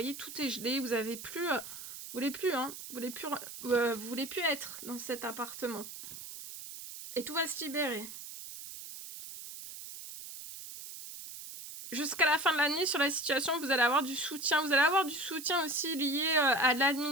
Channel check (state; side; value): noise; right; hiss, 11 dB below the sound